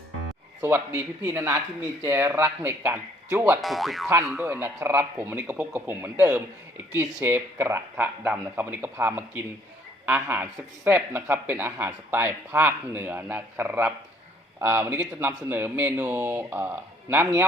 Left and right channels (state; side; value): normal; both; correlation 0.62